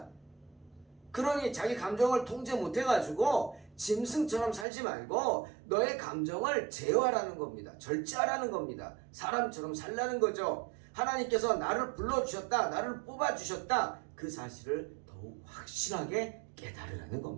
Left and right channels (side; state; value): left; drops out; at 4.7 s